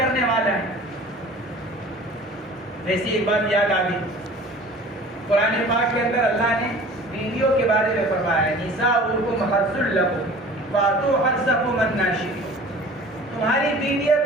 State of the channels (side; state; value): both; normal; correlation 0.44